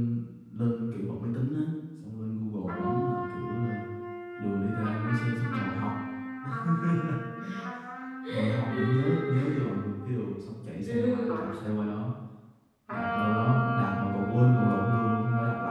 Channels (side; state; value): both; identical; correlation 1.00